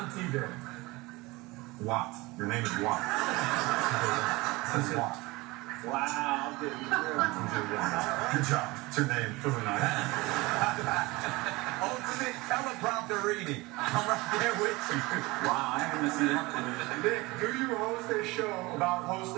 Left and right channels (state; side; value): quieter; left; 22.4 dB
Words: T.J. Watt. Your name is Watt. This is Watt. Wow. Good job. It's your name. Really nice. Ultimate teleprompter reading. I'm right there with you. Wow, I haven't seen that. Nick, do you host a show about